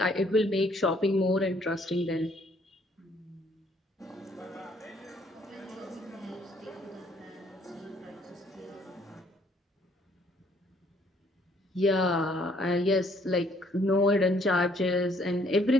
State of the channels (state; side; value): normal; both; correlation 0.64